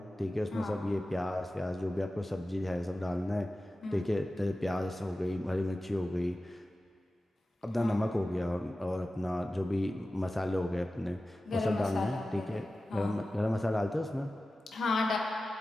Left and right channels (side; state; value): both; normal; correlation 0.95